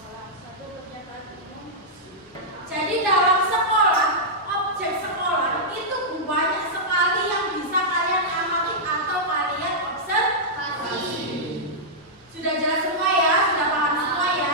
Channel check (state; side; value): normal; both; correlation -0.08